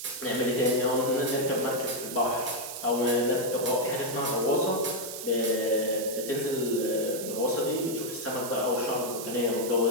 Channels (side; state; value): right; noise; hiss, 8 dB below the sound